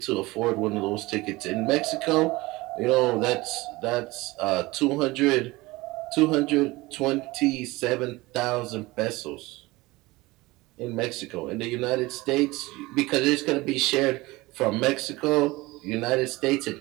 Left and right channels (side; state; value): left; quieter; 21.1 dB